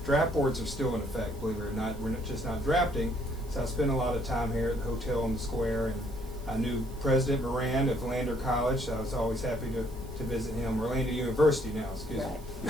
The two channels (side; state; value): right; noise; hiss, 23 dB below the sound